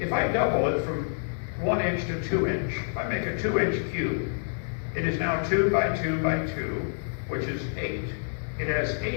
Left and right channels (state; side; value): silent; right; digital silence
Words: If I double it from 1 inch to 2 inch. If I make a 2-inch cube, it is now 2 by 2 by 2, which is 8. It has